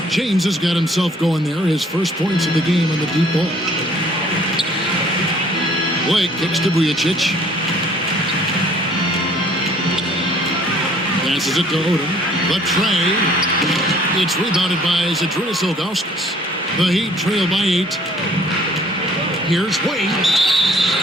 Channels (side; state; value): both; normal; correlation 0.56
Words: James has got himself going there. His first points of the game on the deep ball. Blake kicks to Vujacic. Passes it to Odom. The tray. It's rebounded by Zydrunas Ilgauskas. The Heat trail by 8. Here's Wade.